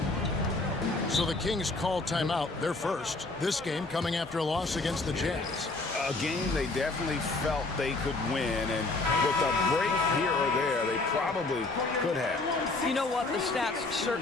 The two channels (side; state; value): right; quieter; 3.3 dB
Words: So the Kings call timeout, their first. This game coming after a loss against the Jazz. A game they definitely felt they could win, and with a break here or there, they probably could have. You know what? The stats